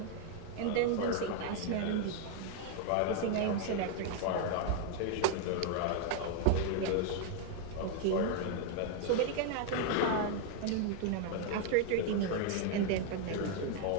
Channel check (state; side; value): different; both; correlation 0.01